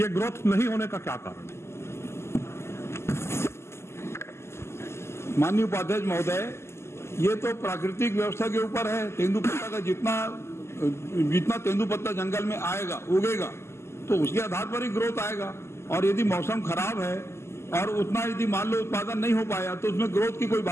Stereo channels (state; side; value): late; right; 0.13 ms